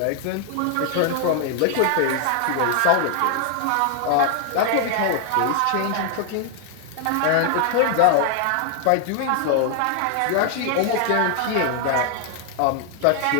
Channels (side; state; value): both; different; correlation 0.00